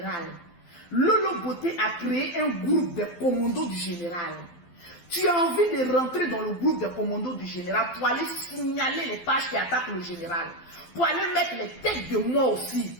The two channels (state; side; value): late; right; 12 ms